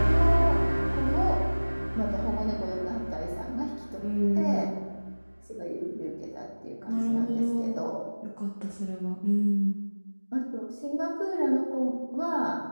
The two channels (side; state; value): both; inverted; correlation -1.00